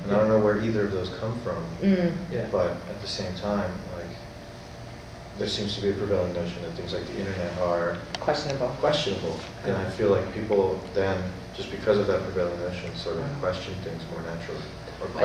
And I don't know where either of those come from, Mm. Yeah. but at the same time, like, there seems to be a prevailing notion that things like the internet are Questionable. questionable, and I feel like people then, just because of that prevailing notion, sort of question things more naturally, or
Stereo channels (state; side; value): identical; both; correlation 1.00